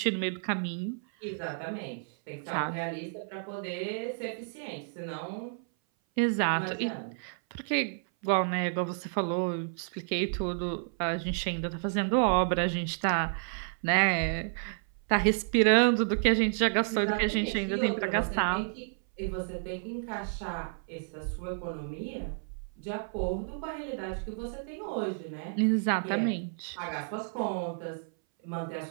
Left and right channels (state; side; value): silent; left; 57 dB below the other